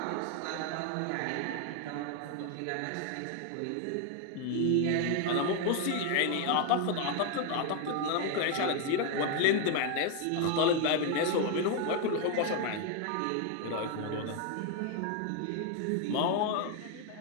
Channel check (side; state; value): both; different; correlation 0.01